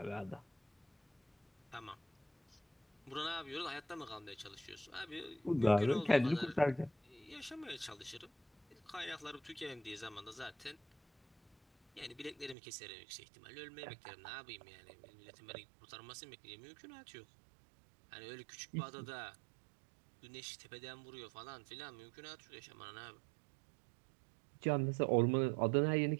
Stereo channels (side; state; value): left; drops out; at 12.6 s